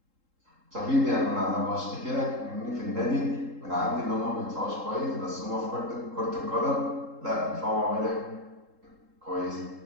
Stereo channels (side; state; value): left; late; 3.7 ms